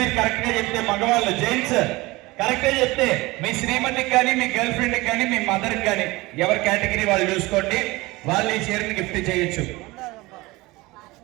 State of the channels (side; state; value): left; quieter; 21.3 dB